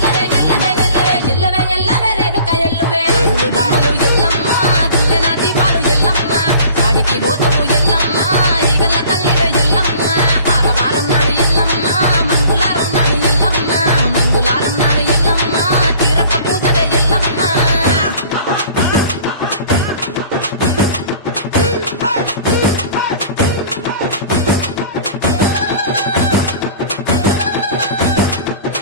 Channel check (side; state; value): both; inverted; correlation -0.48